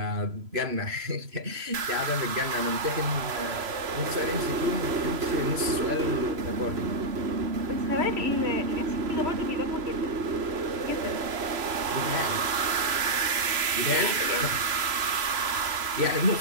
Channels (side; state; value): left; late; 3.0 ms